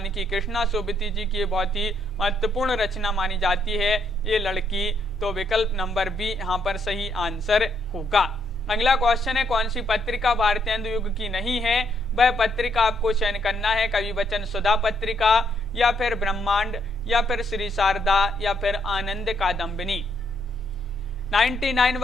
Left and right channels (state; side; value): normal; both; correlation 0.73